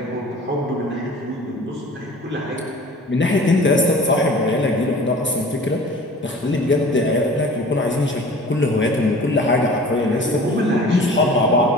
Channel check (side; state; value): both; normal; correlation 0.44